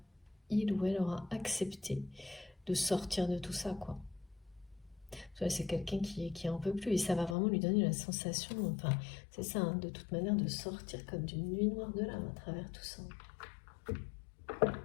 ou elle aura accepté de sortir de tout ça quoi. C'est quelqu'un qui en peut plus et ça va vraiment lui donner la sensation, enfin c'est ça hein, de toute manière, de sortir comme d'une nuit noire de l'âme à travers tout ça.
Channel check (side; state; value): right; drops out; at 7.4 s